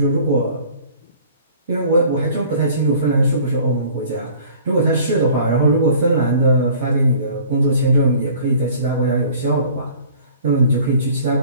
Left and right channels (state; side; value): inverted; both; correlation -0.50